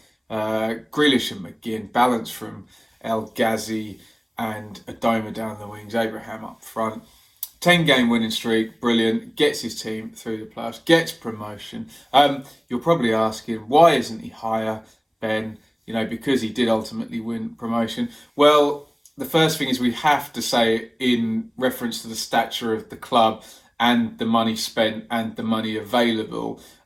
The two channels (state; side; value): identical; both; correlation 1.00